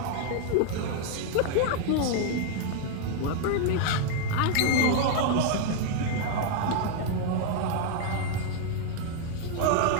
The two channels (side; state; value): both; different; correlation 0.00